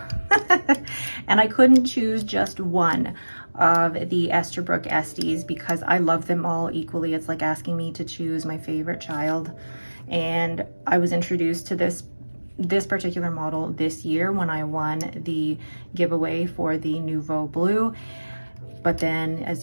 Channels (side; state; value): both; inverted; correlation -1.00